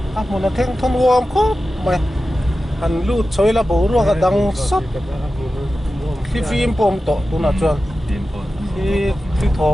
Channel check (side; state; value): both; normal; correlation 0.94